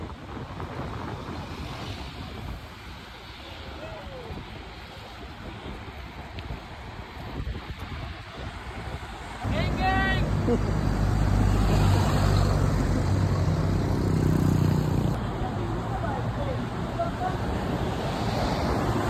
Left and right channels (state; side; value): identical; both; correlation 1.00